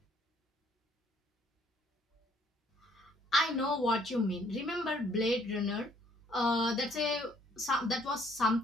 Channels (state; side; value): normal; both; correlation 0.64